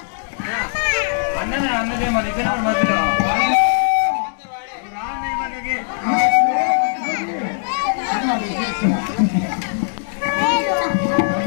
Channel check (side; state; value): right; silent; 66 dB below the other